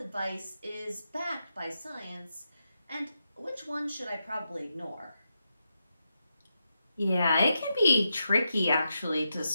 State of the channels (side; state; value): both; inverted; correlation -0.87